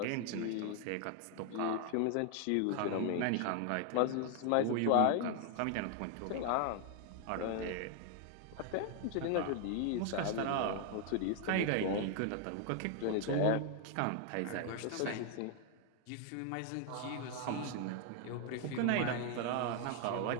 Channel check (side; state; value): both; different; correlation 0.00